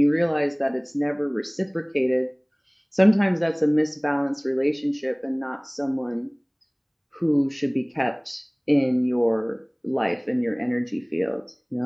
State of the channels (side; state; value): both; identical; correlation 1.00